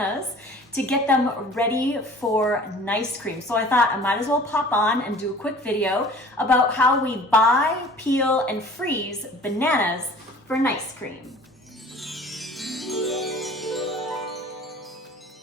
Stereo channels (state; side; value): normal; both; correlation 0.46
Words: to get them ready for nice cream. So I thought I might as well pop on and do a quick video about how we buy, peel, and freeze bananas for nice cream.